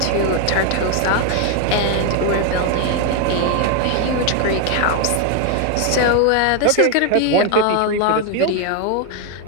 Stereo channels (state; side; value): different; both; correlation 0.01